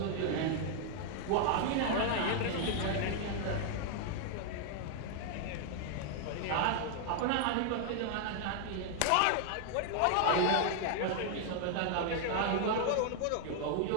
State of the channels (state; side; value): different; both; correlation 0.00